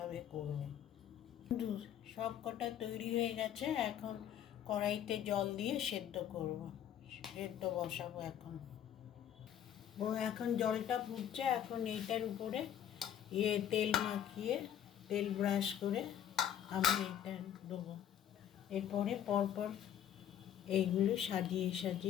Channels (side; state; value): right; quieter; 10.1 dB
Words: করব। সব কটা তৈরি হয়ে গেছে। এখন কড়াইতে জল দিয়ে সেদ্ধ বসাবো। এখন জলটা ফুটছে। এখন এইটার উপরে তেল মাখিয়ে, তেল ব্রাশ করে আমি এটা দেবো। এরপরে পরপর এইগুলো